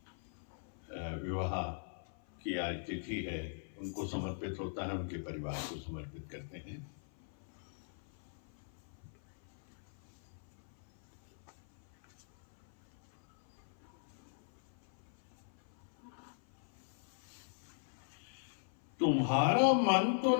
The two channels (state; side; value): silent; right; 51 dB below the other